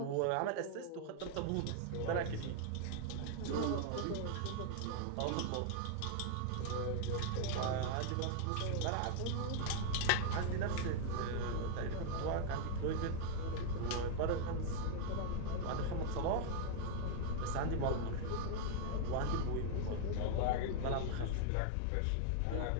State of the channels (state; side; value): different; both; correlation 0.00